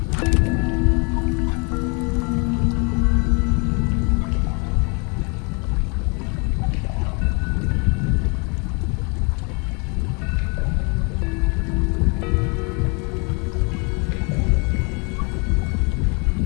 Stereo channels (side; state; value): right; quieter; 33.6 dB